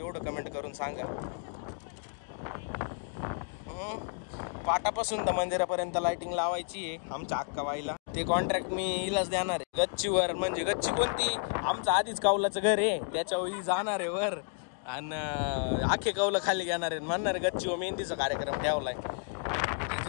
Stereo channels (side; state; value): right; silent; 56 dB below the other